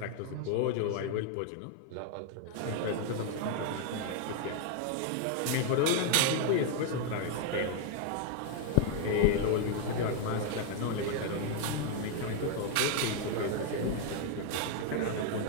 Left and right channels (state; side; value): different; both; correlation 0.00